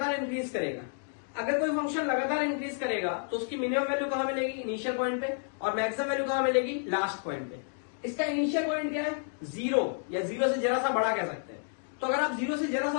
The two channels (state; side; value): silent; right; 57 dB below the other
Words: इंक्रीज करेगा। अगर कोई फंक्शन लगातार इंक्रीज करेगा तो उसकी मिनिमम वैल्यू कहां मिलेगी, इनिशियल पॉइंट पे, और मैक्सिमम वैल्यू कहां मिलेगी, लास्ट पॉइंट पे। इसका इनिशियल पॉइंट क्या है, 0, या 0 से जरा सा बड़ा कह सकते हैं। तो अगर आप 0 से जरा